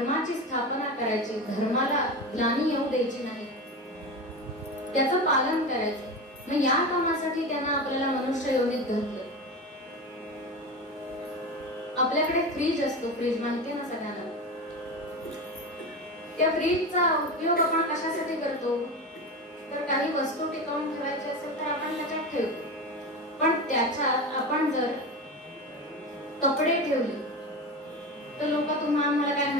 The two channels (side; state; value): both; normal; correlation 0.24